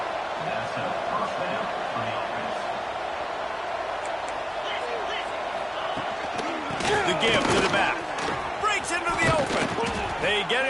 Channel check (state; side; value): identical; both; correlation 1.00